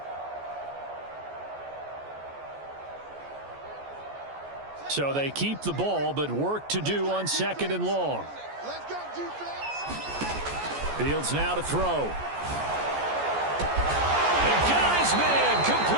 So they keep the ball, but work to do on 2nd and long. Let's go, defense. Fields now to throw. And got his man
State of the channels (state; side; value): late; left; 14 ms